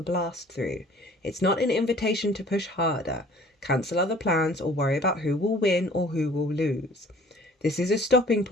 blast through. It's not an invitation to push harder, cancel other plans, or worry about who will win or who will lose. This is a stopping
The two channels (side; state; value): both; normal; correlation 0.52